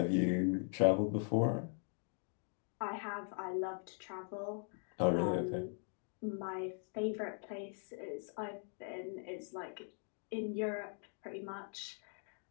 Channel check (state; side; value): silent; right; 51 dB below the other